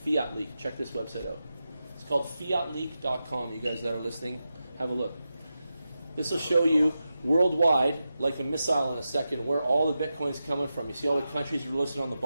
Leak. Check this website out. It's called fiatleak.com. You guys that are listening, have a look. This will show you worldwide, like a missile in a second, where all the Bitcoin's coming from. You see all the countries are listed on the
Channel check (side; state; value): both; inverted; correlation -0.90